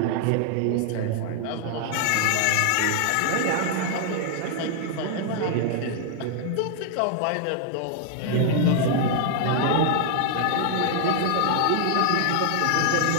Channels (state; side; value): different; both; correlation 0.00